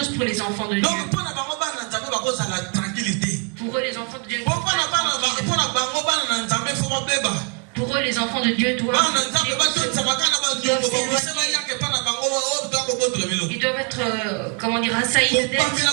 pour les enfants de Dieu. Pour eux, les enfants de Dieu. Pour eux, les enfants de Dieu doivent ils doivent être, comment dire, assaillis de dette.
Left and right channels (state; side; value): quieter; left; 37.5 dB